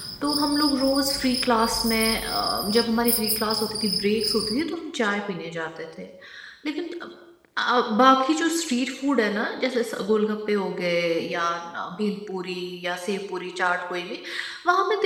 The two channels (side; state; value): both; identical; correlation 1.00